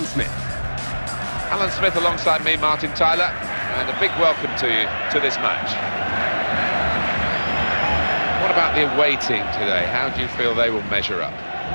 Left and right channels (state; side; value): inverted; both; correlation -1.00